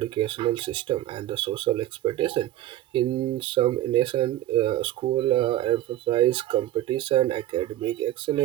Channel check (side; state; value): left; quieter; 13.8 dB